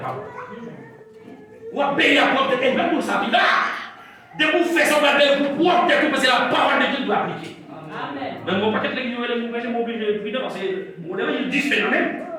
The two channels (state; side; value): identical; both; correlation 1.00